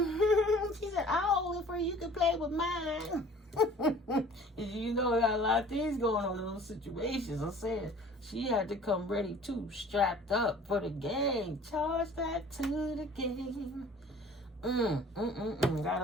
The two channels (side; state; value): both; normal; correlation 0.49